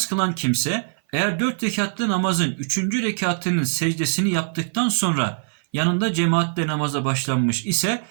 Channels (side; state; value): left; silent; 57 dB below the other